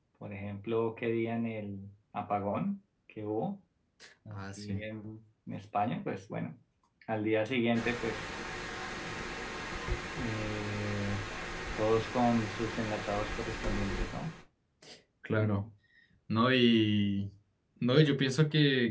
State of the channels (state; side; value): identical; both; correlation 1.00